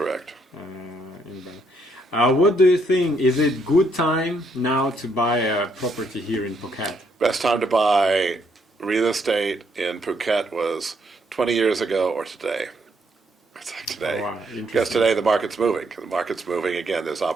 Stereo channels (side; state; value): both; normal; correlation 0.72